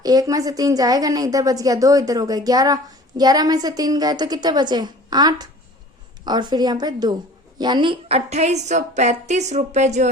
1 में से 3 जाएगा नहीं, इधर बच गया 2, इधर हो गए 11, 11 में से 3 गए तो कितने बचे 8 और फिर यहाँ पे 2, यानी 2835 रुपए जो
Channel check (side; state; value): both; normal; correlation 0.45